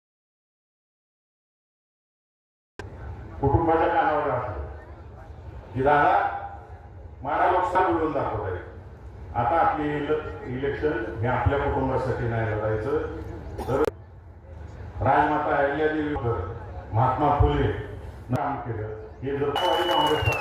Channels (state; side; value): identical; both; correlation 1.00